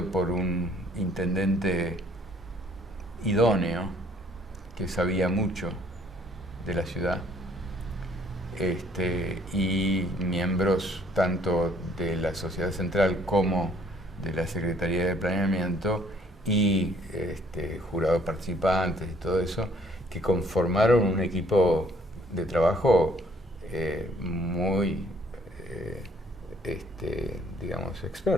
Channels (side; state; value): both; normal; correlation 0.61